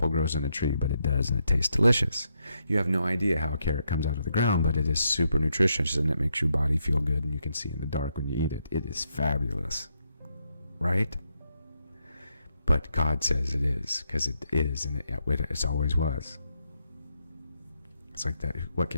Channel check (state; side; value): inverted; both; correlation -0.79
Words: grows on a tree, but it does, and it tastes delicious. You have no idea how a carrot comes out of the ground, but it is super nutritious and it makes your body feel good and you can see in the dark when you eat it. It is fabulous. Right? But God says it is, because it is, and it always was. It's like that, what